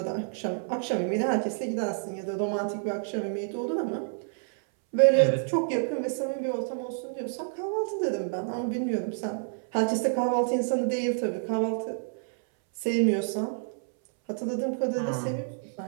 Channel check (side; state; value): left; silent; 58 dB below the other